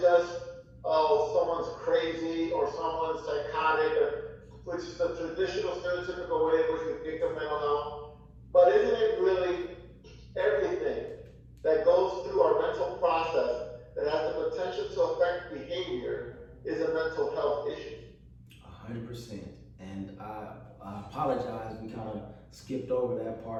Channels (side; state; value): both; identical; correlation 1.00